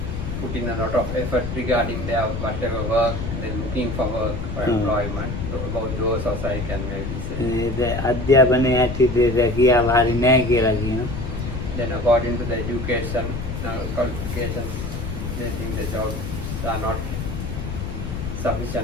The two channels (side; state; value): left; noise; rumble, 5 dB below the sound